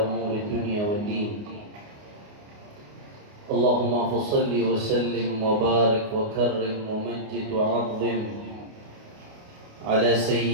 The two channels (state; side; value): late; left; 29 ms